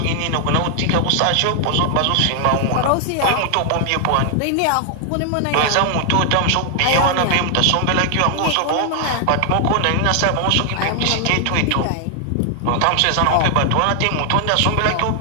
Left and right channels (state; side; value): different; both; correlation 0.00